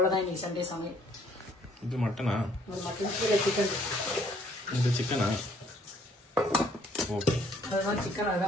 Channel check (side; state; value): both; normal; correlation 0.63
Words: இன்னைக்கு சண்டே சமையல். இது மட்டனா? மட்டன் கீழே சிக்கன். இது சிக்கனா? ஓகே. அதுதான் சிக்கன்,